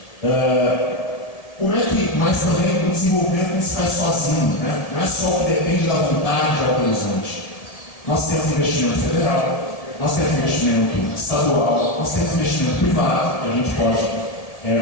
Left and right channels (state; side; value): late; right; 1.7 ms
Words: Mas também o desenvolvimento não se faz sozinho, né? Não é só o que depende da vontade de Alto Horizonte. Nós temos investimento federal, nós temos investimento estadual, nós temos investimento privado, que a gente pode